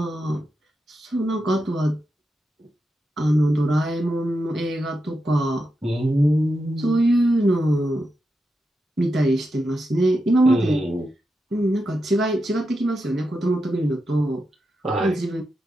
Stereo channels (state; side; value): normal; both; correlation 0.87